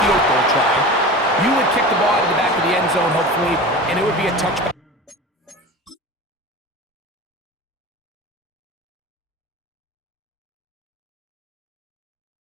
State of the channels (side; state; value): both; normal; correlation 0.33